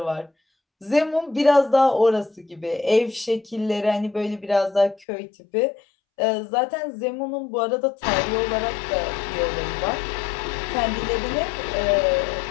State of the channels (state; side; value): drops out; right; at 5.1 s